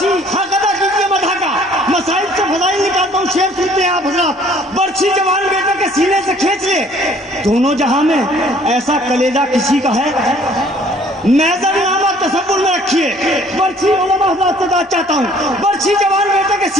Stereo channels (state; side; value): normal; both; correlation 0.57